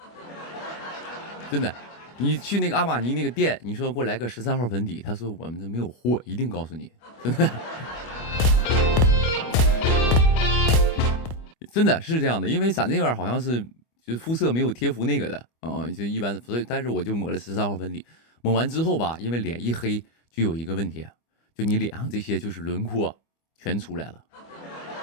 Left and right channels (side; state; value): right; late; 25 ms